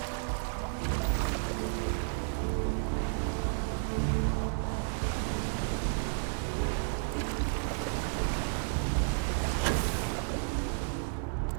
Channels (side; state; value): left; silent; digital silence